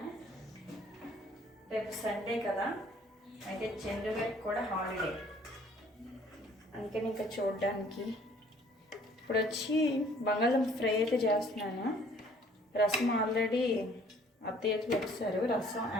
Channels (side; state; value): both; normal; correlation 0.57